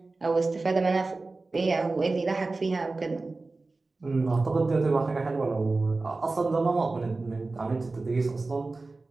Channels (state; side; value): quieter; left; 3.5 dB